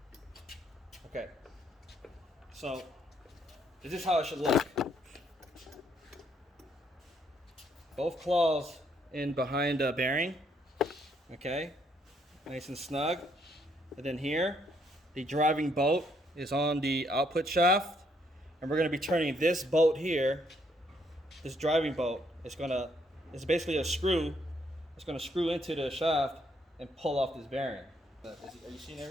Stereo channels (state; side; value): normal; both; correlation 0.71